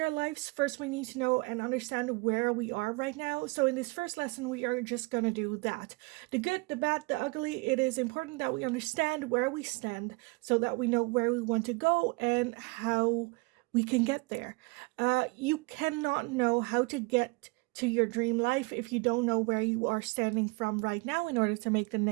lives, first we need to know and understand where we are right now. So in this first lesson, we are just going to do that. The good, the bad, the ugly. It is important that we understand where we stand so that we know where we want to go and how we can get there. You cannot know how to get to your dream life if you don't know where you are standing from right now in order to make the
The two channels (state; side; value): quieter; left; 27.3 dB